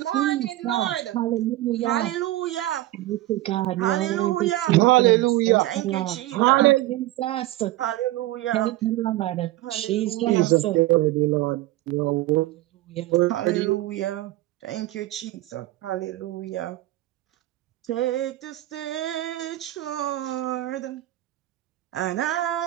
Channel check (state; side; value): quieter; left; 16.5 dB